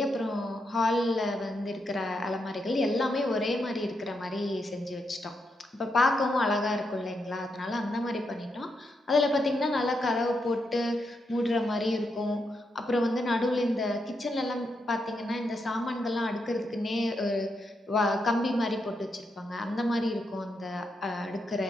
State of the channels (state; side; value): normal; both; correlation 0.82